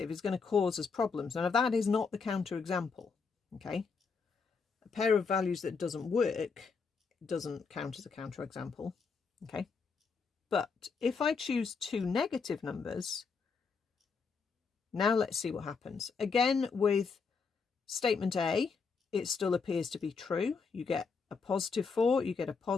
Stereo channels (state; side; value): quieter; right; 5.2 dB